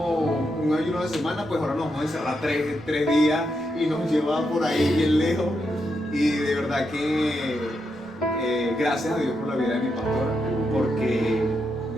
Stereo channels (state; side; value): normal; both; correlation 0.83